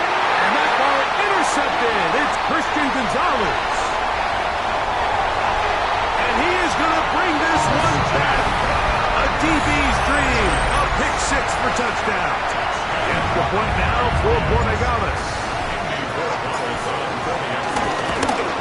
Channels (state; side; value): identical; both; correlation 1.00